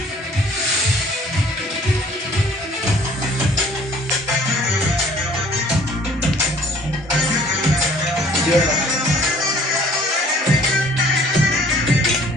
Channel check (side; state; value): both; normal; correlation 0.55